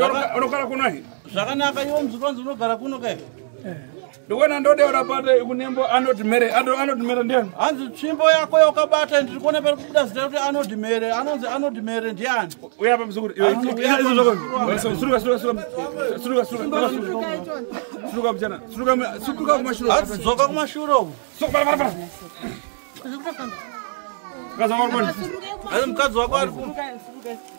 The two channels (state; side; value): silent; left; 65 dB below the other